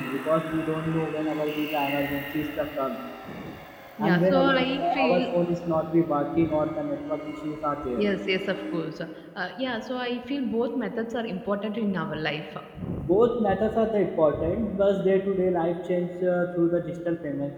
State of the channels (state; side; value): identical; both; correlation 1.00